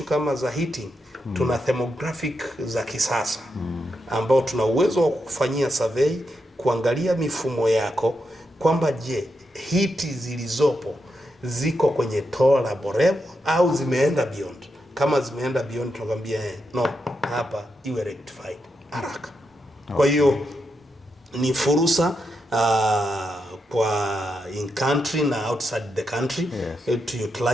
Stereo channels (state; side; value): normal; both; correlation 0.84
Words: kama za heating, tuna thermographic za kisasa ambao tuna uwezo wa kufanyia survey, kuangalia mifumo yako kwamba je, hiti zilizopo ziko kwenye tolerable level au zimeenda beyond. Kama zimeenda beyond, tunakwambia no, hapa iwe rectified haraka. Kwa hiyo ni fursa kwa in country na outside the country to